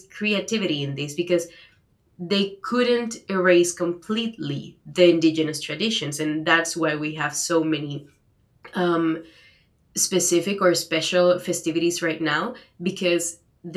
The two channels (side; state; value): both; identical; correlation 1.00